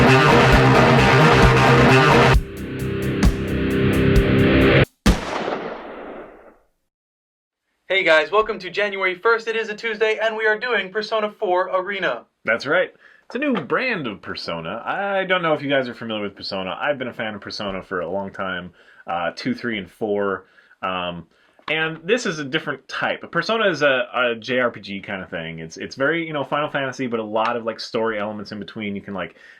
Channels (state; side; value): identical; both; correlation 1.00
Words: Hey guys, welcome to January 1st. It is a Tuesday, and we are doing Persona 4 Arena. That's right. It's a new brand of Persona. I don't know if you guys are familiar with Persona. I've been a fan of Persona for a long time, 2, 3, and 4. And this is a different type. Persona is a JRPG kind of thing. It's very, Final Fantasy, but a lot of, story elements in between. You can,